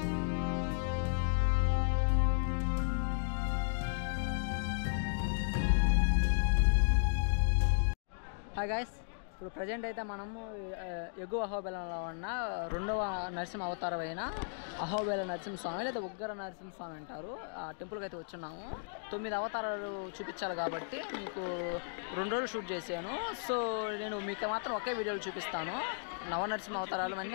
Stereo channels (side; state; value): right; silent; digital silence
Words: హాయ్ గాయస్, ఇప్పుడు ప్రజెంట్ అయితే మనము ఎగువ అహోబిలంలో ఉన్న రెండవ నరసింహ అవతారం అయిన అహోబిల నరసింహస్వామి లేదా ఉగ్ర నరసింహస్వామి అంటారు, ఆ టెంపుల్కి అయితే వచ్చున్నాము. 9 అవతారాలు చూపించాలి కాబట్టి మీకు 2 రోజులు షూట్ చేశాను. సో నేను మీకు మాత్రం ఒకే వీడియోలు చూపిస్తాను. నవనరసింహ అవతారాలు